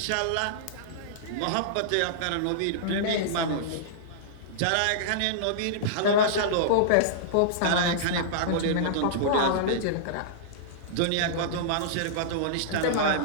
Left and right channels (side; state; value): both; different; correlation -0.02